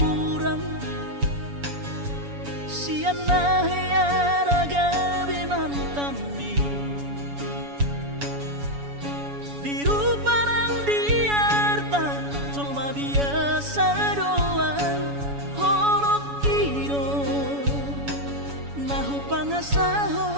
siana heara gabe mantami diru parang diarta cuma biasa doang horok kiro nahu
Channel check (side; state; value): left; late; 7.1 ms